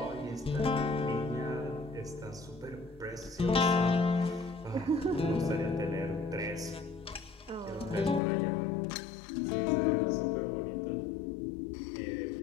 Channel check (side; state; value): right; drops out; at 8.2 s